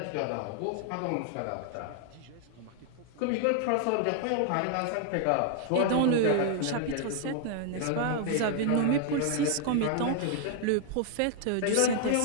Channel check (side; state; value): both; different; correlation 0.00